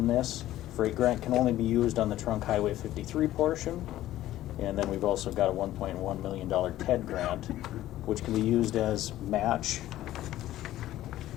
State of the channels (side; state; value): right; quieter; 14.2 dB